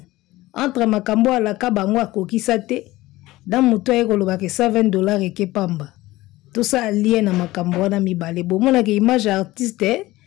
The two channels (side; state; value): right; quieter; 18.1 dB